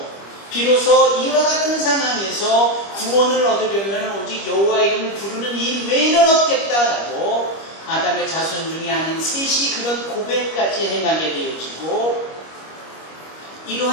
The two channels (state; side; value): late; right; 25 ms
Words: 비로소 이와 같은 상황에서 구원을 얻으려면 오직 여호와 이름을 부르는 일 외에는 없겠다라고 아담의 자손 중에 아닌 셋이 그런 고백까지 행하게 되어지고,